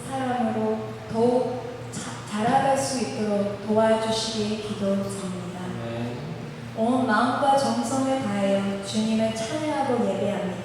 사랑으로 더욱 자라갈 수 있도록 도와주시기 기도드립니다. 온 마음과 정성을 다하여 주님을 찬양하고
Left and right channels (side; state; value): both; identical; correlation 1.00